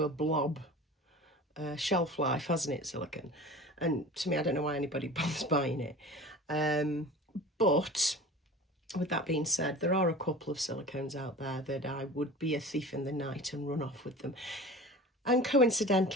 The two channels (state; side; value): normal; both; correlation 0.37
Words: a blob shelf life, hasn't it, silicone? And to me, I don't know why anybody bothers buying it. But with that being said, there are a couple of silicones out there that I would be a thief in the night and run off with them. And